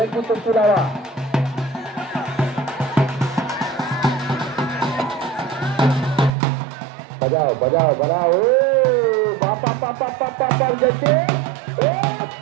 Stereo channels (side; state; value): left; drops out; at 6.3 s